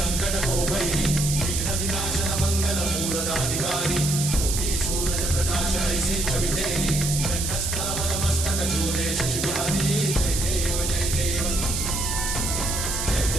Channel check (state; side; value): noise; right; hiss, 2 dB below the sound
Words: को भैरी विघ्न विनाशन मंगल मूर्धाधिकारी कोटि सूरज प्रकाश ऐसी छवि तेरी कंठस्थल मस्तक झूले शशि बिहारी जय देव जय